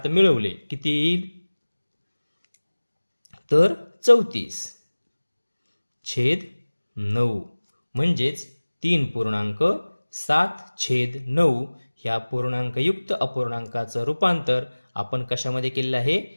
मिळवले किती येईल? तर 34 छेद 9 म्हणजेच 3.7/9 ह्या पूर्णांकयुक्त अपूर्णांकाचं रूपांतर आपण कशामध्ये केलेलं आहे?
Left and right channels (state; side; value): inverted; both; correlation -1.00